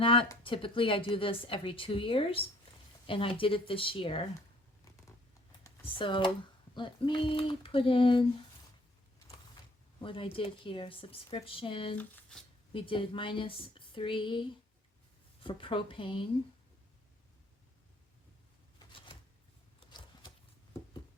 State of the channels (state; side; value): normal; both; correlation 0.59